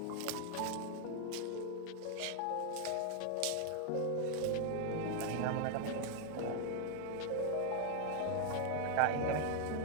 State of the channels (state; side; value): different; both; correlation 0.00